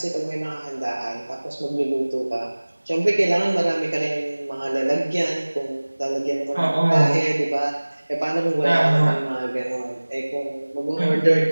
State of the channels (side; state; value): both; inverted; correlation -1.00